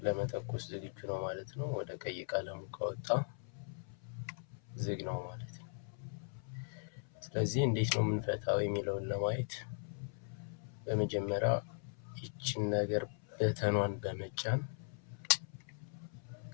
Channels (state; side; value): silent; right; 52 dB below the other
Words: ለመተኮስ ዝግጁ ነው ማለት ነው። ወደ ቀይ ቀለሙ ከወጣ ዝግ ነው ማለት ነው። ስለዚህ እንዴት ነው የምንፈታው የሚለውን ለማየት በመጀመሪያ ይችን ነገር በተኗን በመጫን